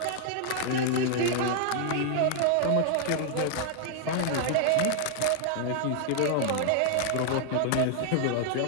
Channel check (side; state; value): both; different; correlation 0.00